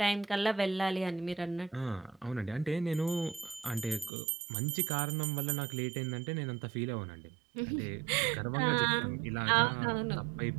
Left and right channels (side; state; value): left; drops out; at 4.1 s